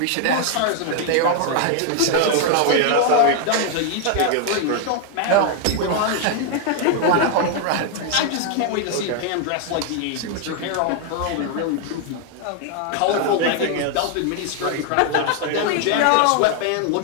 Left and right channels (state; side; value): different; both; correlation 0.00